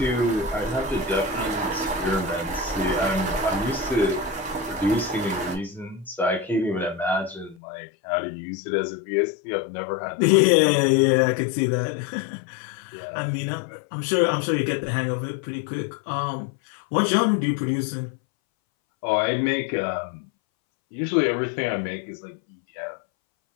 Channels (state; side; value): drops out; right; at 7.6 s